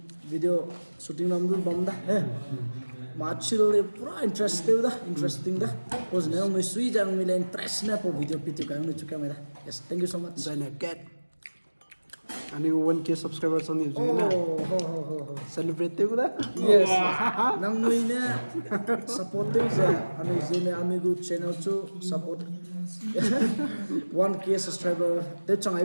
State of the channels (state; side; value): inverted; both; correlation -1.00